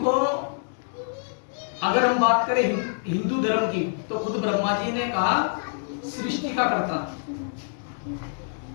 अगर हम बात करें हिंदू धर्म की, तो खुद ब्रह्मा जी ने कहा सृष्टि का करता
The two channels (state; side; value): silent; right; digital silence